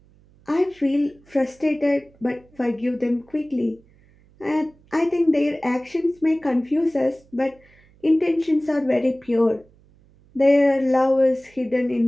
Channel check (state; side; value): noise; right; hum, 30 dB below the sound